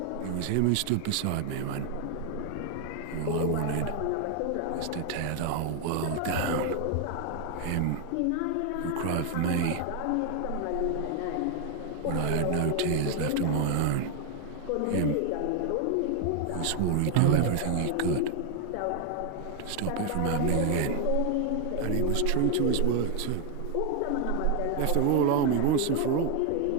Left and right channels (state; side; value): different; both; correlation 0.00